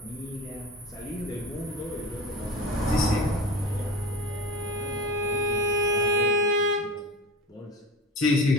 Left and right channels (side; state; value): both; normal; correlation 0.35